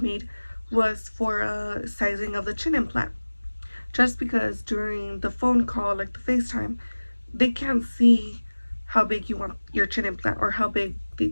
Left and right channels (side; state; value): both; inverted; correlation -1.00